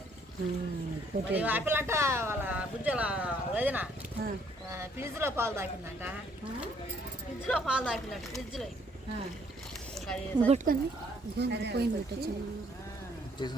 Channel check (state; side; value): normal; both; correlation 0.65